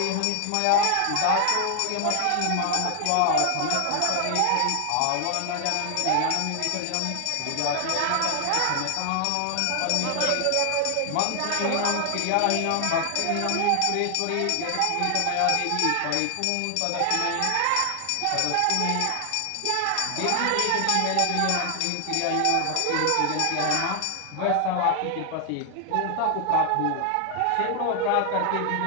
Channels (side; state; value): both; different; correlation 0.00